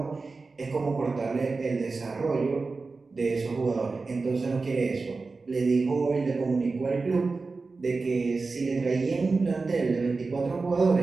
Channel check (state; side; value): quieter; left; 4.0 dB